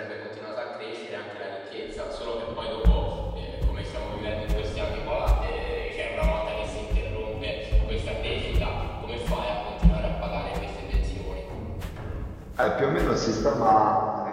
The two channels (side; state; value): both; identical; correlation 1.00